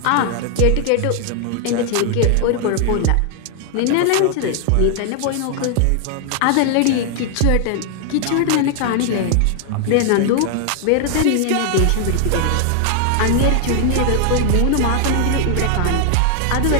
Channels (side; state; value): both; different; correlation 0.00